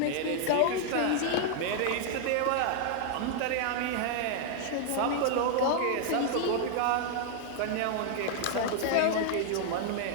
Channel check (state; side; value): different; both; correlation 0.00